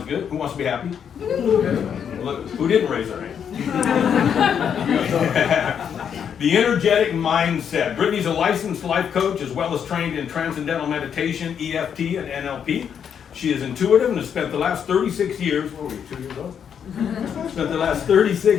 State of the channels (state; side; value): quieter; right; 7.9 dB